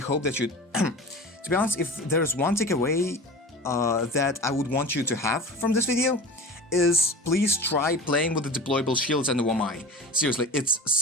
that you... to be honest, if there's one takeaway that I would want you to have from this video, is please try playing with the deployable shields and the Wamai. Seriously, it's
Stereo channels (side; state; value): both; normal; correlation 0.34